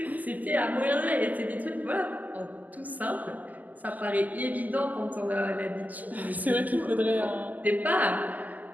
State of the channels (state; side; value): late; left; 0.081 ms